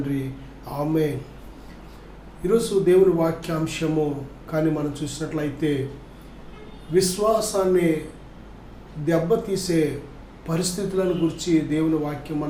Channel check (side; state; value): both; identical; correlation 1.00